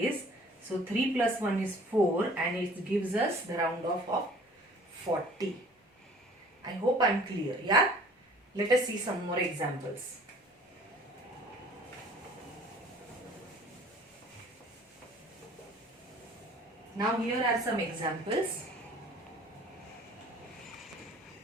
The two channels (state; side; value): normal; both; correlation 0.50